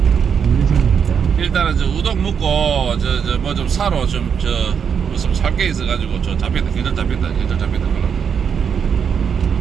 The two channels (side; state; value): left; quieter; 7.1 dB